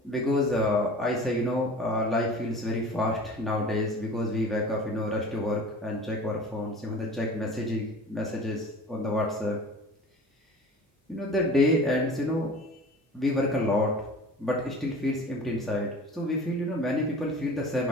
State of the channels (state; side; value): normal; both; correlation 0.41